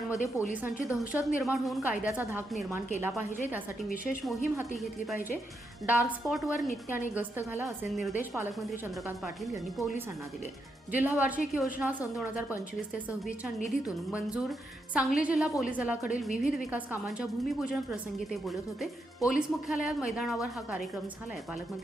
पोलिसांची दहशत निर्माण होऊन कायद्याचा धाक निर्माण केला पाहिजे, त्यासाठी विशेष मोहीम हाती घेतली पाहिजे। डार्क स्पॉटवर नित्याने गस्त घाला असे निर्देश पालकमंत्री चंद्रकांत पाटील यांनी पोलिसांना दिले। जिल्हा वार्षिक योजना सन 2025 ते 26च्या निधीतून मंजूर सांगली जिल्हा पोलीस दलाकडील विविध विकास कामांच्या भूमिपूजन प्रसंगी ते बोलत होते। पोलीस मुख्यालयात मैदानावर हा कार्यक्रम झालाय।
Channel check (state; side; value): normal; both; correlation 0.82